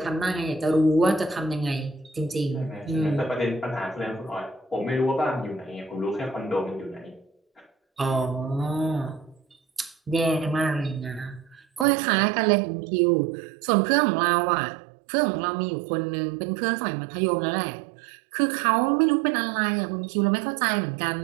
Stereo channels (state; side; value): drops out; left; at 11.9 s